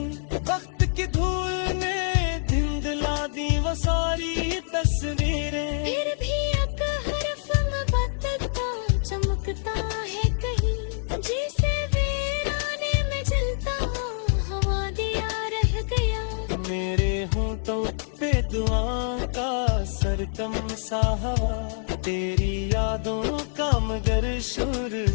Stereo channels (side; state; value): right; silent; digital silence